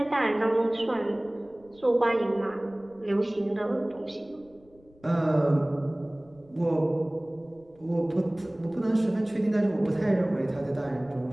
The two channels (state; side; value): noise; left; rumble, 29 dB below the sound